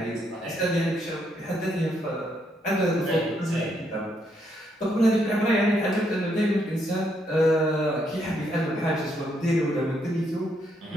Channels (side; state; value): both; normal; correlation 0.75